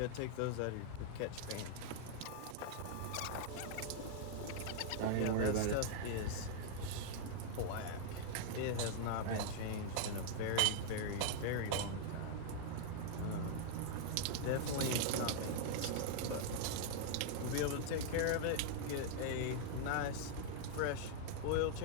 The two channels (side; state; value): both; different; correlation 0.00